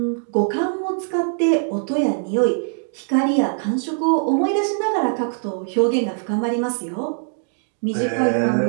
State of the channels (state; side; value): silent; left; digital silence